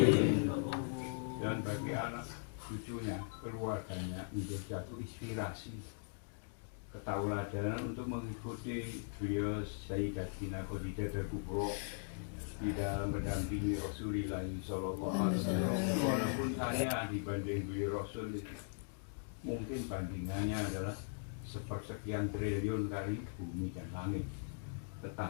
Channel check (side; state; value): right; silent; digital silence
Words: Dan bagi anak cucunya, keluarganya, menjadi satu inspirasi, ketauladanan untuk mengikuti beliau Sayyidatina Khadijatul Kubra di dalam mendampingi Rasulullah Sallallahu Alaihi Wasallam. Walaupun saya dibanding beliau Rasul mungkin bandingannya adalah sepersekian triliun kali bumi dan langit,